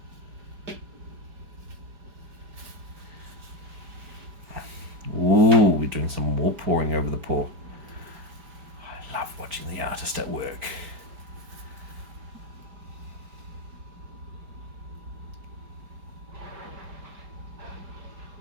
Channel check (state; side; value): late; left; 4.9 ms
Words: Ooh, we're doing some more pouring over the paw. I love watching the artist at work.